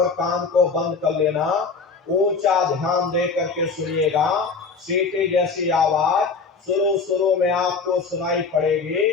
कान को बंद कर लेना, ऊंचा ध्यान दे करके सुनिएगा। सीटी जैसी आवाज शुरू शुरू में आपको सुनाई पड़ेगी,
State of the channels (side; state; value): right; quieter; 4.7 dB